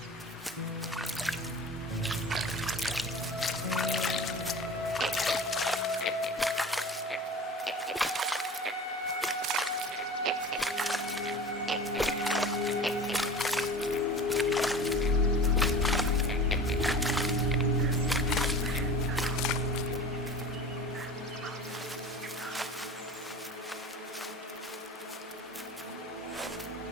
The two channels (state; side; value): normal; both; correlation 0.37